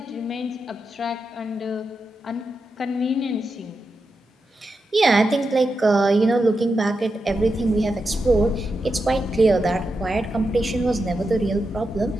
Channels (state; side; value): normal; both; correlation 0.88